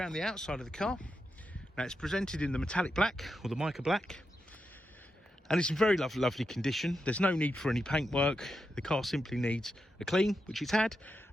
the outside of the car. Now it's presented in the metallic black, or the mica black, and it's in very lovely condition. There's no need for any paintwork. The car simply needs a clean, which it's had,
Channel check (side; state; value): both; normal; correlation 0.87